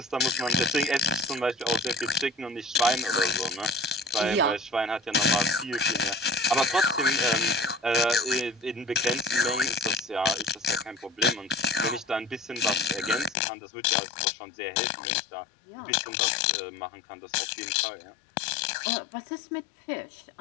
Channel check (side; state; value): right; drops out; at 13.4 s